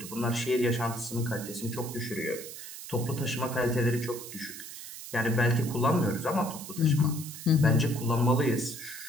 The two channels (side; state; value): right; noise; hiss, 11 dB below the sound